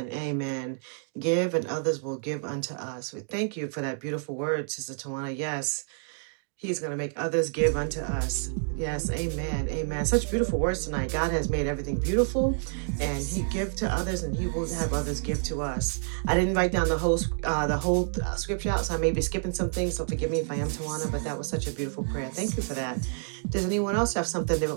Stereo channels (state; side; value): silent; left; digital silence